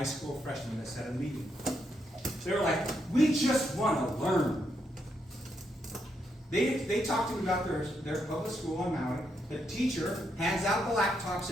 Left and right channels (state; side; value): normal; both; correlation 0.79